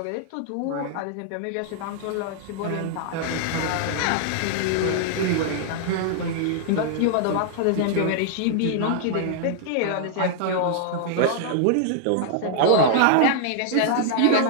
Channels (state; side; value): different; both; correlation 0.00